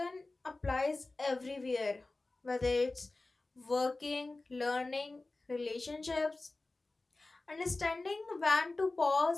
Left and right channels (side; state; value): right; quieter; 3.2 dB